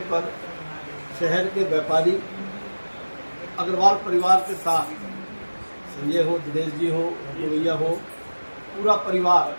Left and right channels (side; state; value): both; inverted; correlation -1.00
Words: पर शहर के व्यापारी अग्रवाल परिवार के साथ संजय हो, दिनेश जी हो, भैया हो, पूरा परिवार